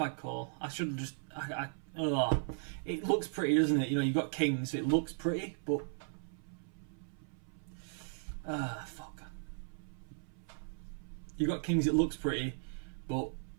call. I should have just. It looks pretty, doesn't it? You know, you've got kings, so it looks pretty, but. Fuck. You've got kings, it looks pretty, but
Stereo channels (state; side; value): silent; left; 53 dB below the other